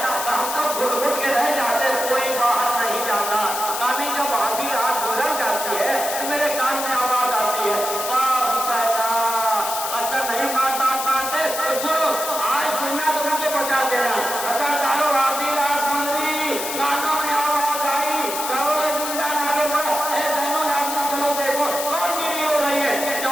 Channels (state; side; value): noise; left; hiss, 5 dB below the sound